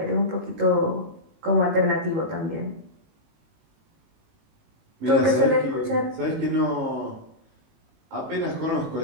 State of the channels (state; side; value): late; left; 19 ms